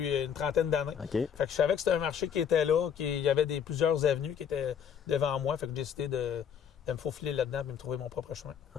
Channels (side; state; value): right; quieter; 8.0 dB